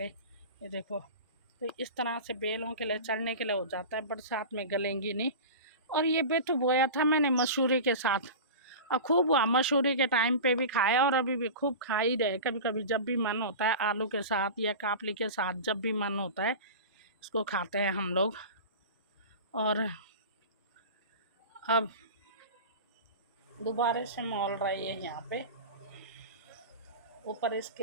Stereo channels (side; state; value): both; inverted; correlation -0.31